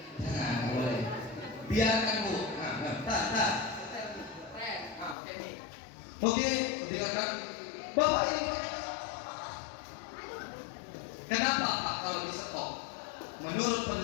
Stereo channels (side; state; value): right; drops out; at 5.2 s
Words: Jangan, boleh. Biarkan Bu. Oke, dengarkan. Bapak ini, kenapa Pak kalau di stop? Menurut